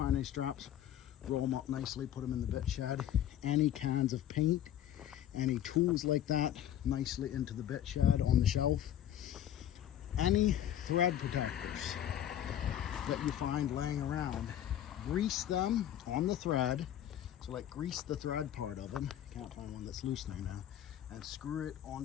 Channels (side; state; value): right; quieter; 11.2 dB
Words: any straps, roll them up nicely, put them in the bit shed. Any cans of paint, any tools like that, nicely into the bit shed on the shelf. Any thread protectors that you find laying around, grease them on the thread. So like grease the thread part of them, can't find one that's loosening now, and screw it